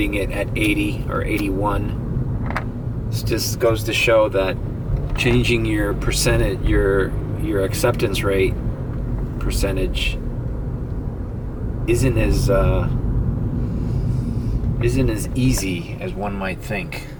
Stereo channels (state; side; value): identical; both; correlation 1.00